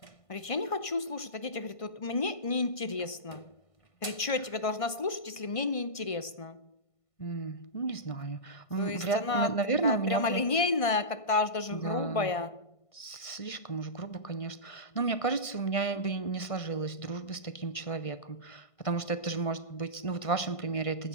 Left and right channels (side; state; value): right; late; 1.5 ms